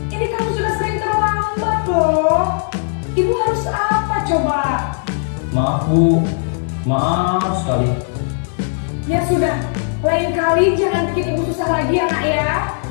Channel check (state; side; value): silent; right; digital silence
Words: Ini kamu sudah sering terlambat loh. Ibu harus apa coba? Maaf Bu. Maaf sekali. Ya sudah, lain kali jangan bikin ibu susah lagi ya nak ya.